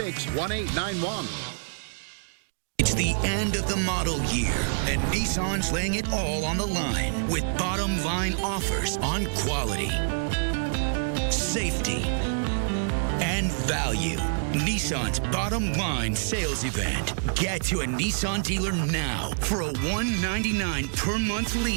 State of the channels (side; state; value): left; silent; digital silence